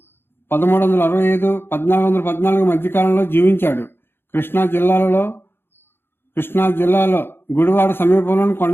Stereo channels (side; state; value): right; late; 0.11 ms